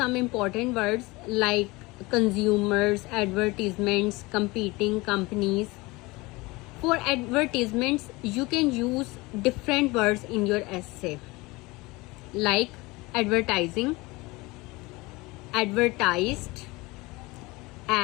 important words like consumers, advertisements, competing companies. For advertisements, you can use different words in your essay like advertising, advertised,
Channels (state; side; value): quieter; right; 23.0 dB